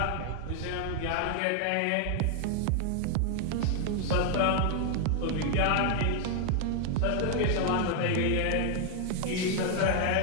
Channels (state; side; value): different; both; correlation 0.00